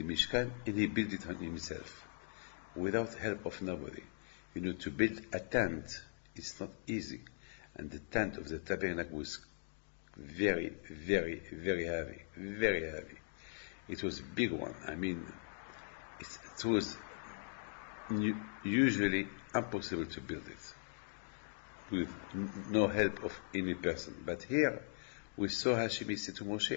Mishkan and he built it on himself, without help of nobody. To build a tent, it's not easy, and the tent of the tabernacle was very, very, very heavy, very heavy. It was a big one. It was usually impossible to build it with no help of any person. But here we saw Hashem say to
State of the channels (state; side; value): silent; right; digital silence